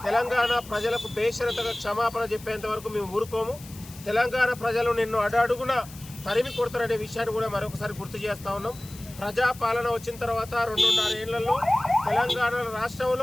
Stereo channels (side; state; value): left; noise; hiss, 18 dB below the sound